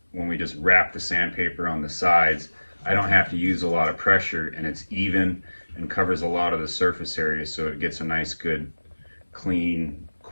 when we just wrap the sandpaper on the sides, I don't have to use a lot of pressure, and it's even and covers a lot of the surface area, so it gets a nice, good, clean,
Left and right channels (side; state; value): both; inverted; correlation -1.00